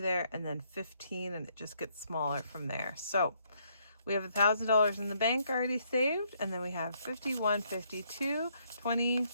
there, and then 15, and it just gets smaller from there. So we have $1,000 in the bank already saved, and then we have 51, 52, 20,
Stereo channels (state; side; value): inverted; both; correlation -0.71